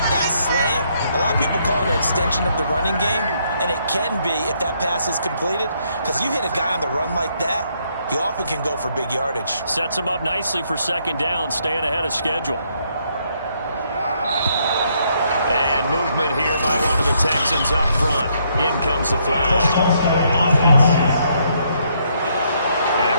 that slant. A lot of people call it an extension of the running game, and it can be if that pass is completed, because you hit a guy on the run like that, he often can go for big yardage. Sets him up nicely for 2nd down, staying ahead of schedule. And movement here by one of the Texans up front. In comes the flag. And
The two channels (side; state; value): both; inverted; correlation -0.72